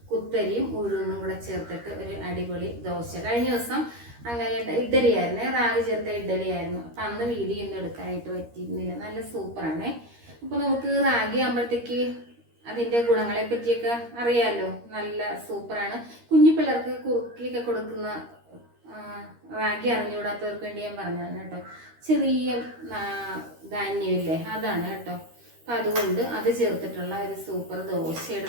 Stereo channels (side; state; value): left; late; 13 ms